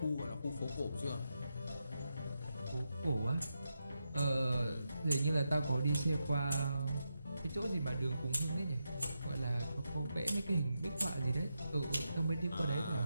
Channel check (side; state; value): both; inverted; correlation -0.86